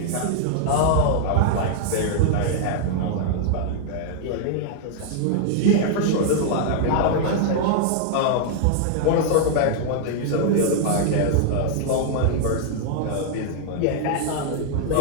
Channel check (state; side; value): different; both; correlation -0.01